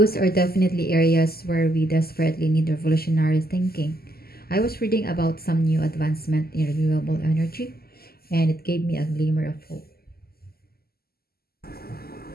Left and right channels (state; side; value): late; right; 0.45 ms